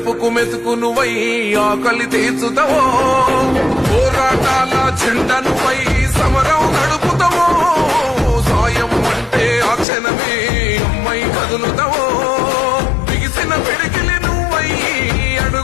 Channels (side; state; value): right; drops out; at 9.9 s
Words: మెతుకునువై ఆకలి తీర్చుతావో, పోరాటాల జెండనువై సమరం నడుపుతావో, సాయం అంటే ఆ క్షణమే అమ్మై కదులుతావో, బిగిసిన పిడికిలి నువ్వై